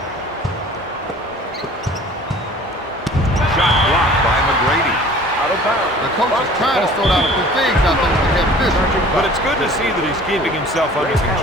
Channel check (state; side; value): normal; both; correlation 0.47